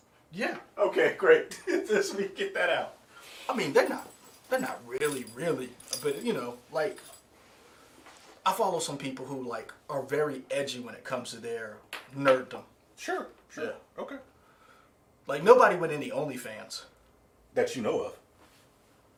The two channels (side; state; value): both; identical; correlation 1.00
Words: Yeah. Okay, great. Let me get that out. I mean, they're not really, but you know, like, I follow some people who like are very edgy when it comes to their nerddom. Sure. Yeah. Okay. Like nobody with any OnlyFans. That you know of.